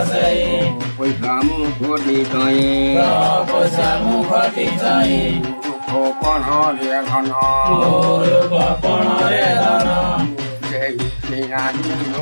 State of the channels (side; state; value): both; inverted; correlation -1.00